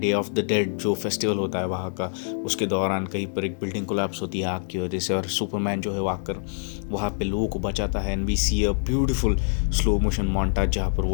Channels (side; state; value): right; silent; 61 dB below the other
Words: ऑफ द डेड जो फेस्टिवल होता है वहाँ का, उसके दौरान कहीं पर एक बिल्डिंग कोलैप्स होती है आग की वजह से, और सुपरमैन जो है वो आकर वहाँ पे लोगों को बचाता है। And we see a beautiful slow motion montage जहाँ पर